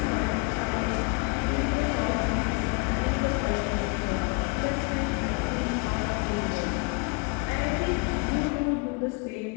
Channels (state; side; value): quieter; right; 32.2 dB